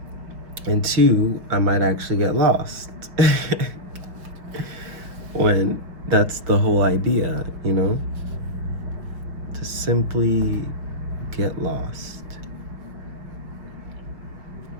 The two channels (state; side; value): late; left; 5.6 ms